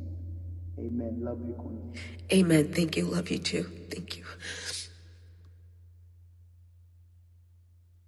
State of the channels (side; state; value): both; identical; correlation 1.00